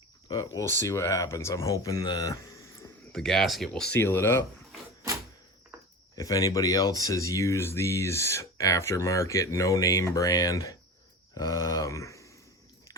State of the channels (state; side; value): normal; both; correlation 0.31